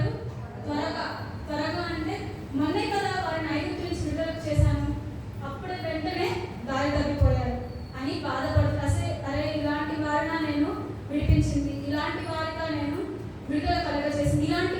త్వరగా అంటే మొన్నే కదా వారిని ఐగుప్తు నుంచి విడుదల చేశాను, అప్పుడే వెంటనే దారి తప్పిపోయారు అని బాధపడుతూ, అరే ఇలాంటి వారిన నేను విడిపించింది, ఇలాంటి వారిగా నేను విడుదల కలగజేసింది, ఇలాంటి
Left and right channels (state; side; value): identical; both; correlation 1.00